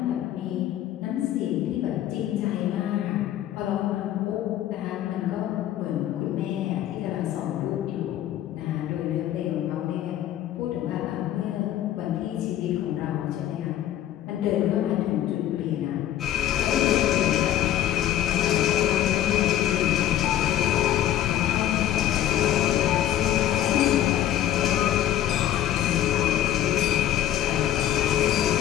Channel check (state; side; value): quieter; right; 12.1 dB